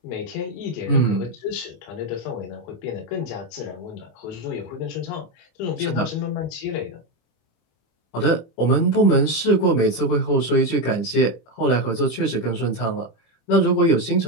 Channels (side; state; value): right; late; 25 ms